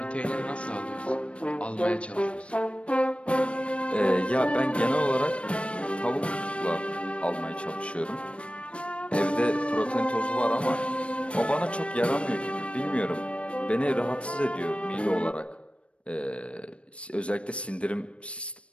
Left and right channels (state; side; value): late; right; 0.060 ms